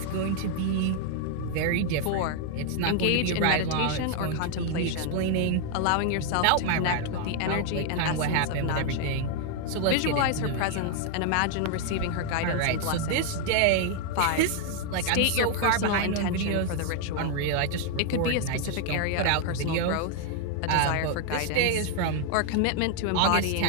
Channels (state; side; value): different; both; correlation 0.00